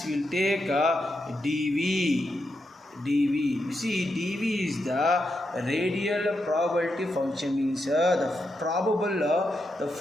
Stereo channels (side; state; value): both; normal; correlation 0.84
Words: will take dV. You see, dV is the radial probability function, means the probable the